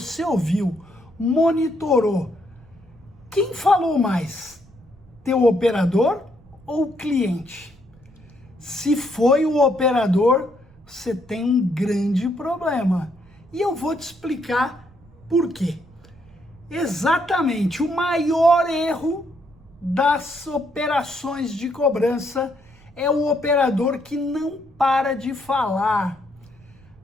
ouviu, monitorou, quem falou mais? Teu operador ou o cliente? Se foi o operador, você tem um grande problema. E eu vou te explicar por quê. Exatamente, o maior erro das operações de cobrança é o operador que não para de falar.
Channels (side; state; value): right; noise; rumble, 26 dB below the sound